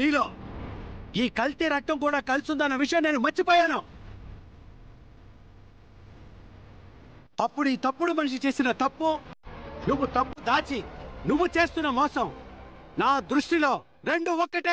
నీలో ఈ కల్తీ రక్తం కూడా కలిసిందన్న విషయం నేను మర్చిపోయాను. అప్పుడు ఈ తప్పుడు మనిషి చేసిన తప్పు, నువ్వు తప్పు దాచి నువ్వు చేస్తున్న మోసం, నా దృష్టిలో రెండు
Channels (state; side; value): identical; both; correlation 1.00